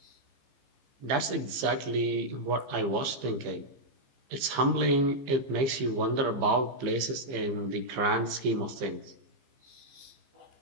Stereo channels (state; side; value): late; left; 15 ms